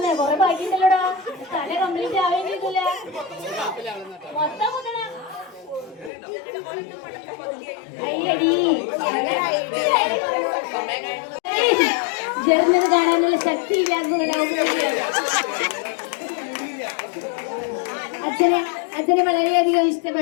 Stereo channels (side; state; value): right; drops out; at 6.1 s